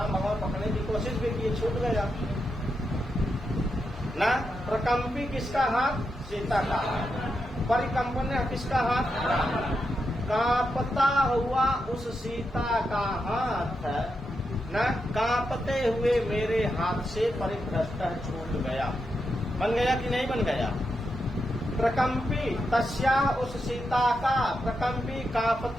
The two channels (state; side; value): normal; both; correlation 0.85